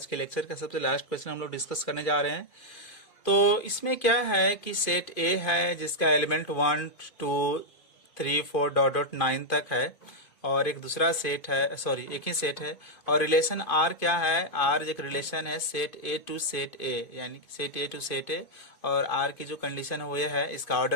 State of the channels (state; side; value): late; right; 2.5 ms